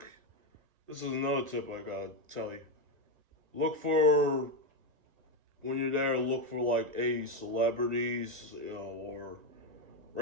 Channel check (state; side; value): late; left; 1.9 ms